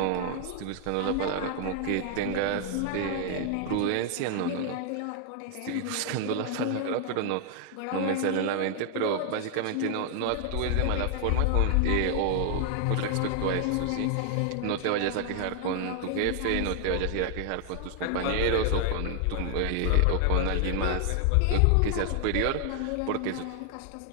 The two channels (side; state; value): both; different; correlation 0.00